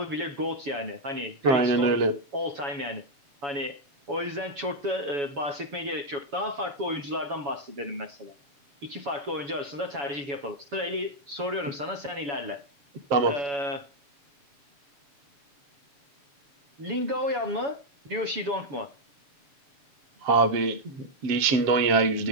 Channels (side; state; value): left; late; 7.1 ms